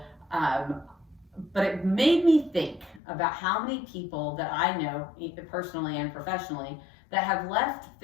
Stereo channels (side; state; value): right; drops out; at 3.0 s